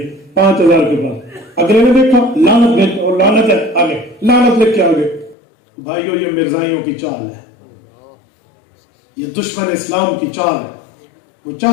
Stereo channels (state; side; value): drops out; right; at 5.4 s